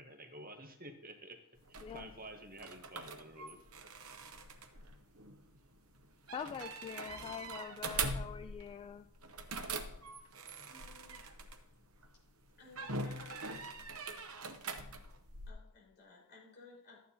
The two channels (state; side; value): normal; both; correlation 0.16